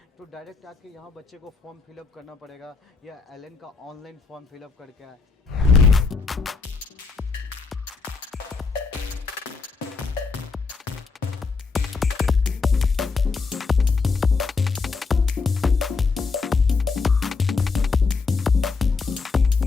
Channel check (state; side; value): quieter; right; 4.5 dB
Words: तो डायरेक्ट आके यहाँ बच्चे को फॉर्म फिलअप करना पड़ेगा या एलन का ऑनलाइन फॉर्म फिलअप करके आए?